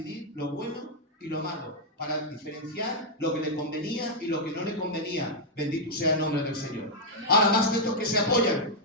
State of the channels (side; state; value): both; normal; correlation -0.03